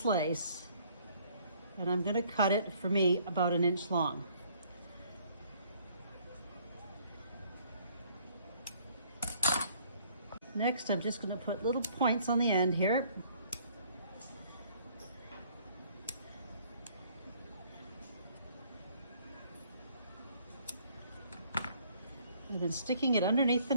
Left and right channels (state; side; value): inverted; both; correlation -0.61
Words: lace, and I'm going to cut it, for me, about 1 inch long. Next, I'm just going to put little points on the end here. And then sticking it underneath the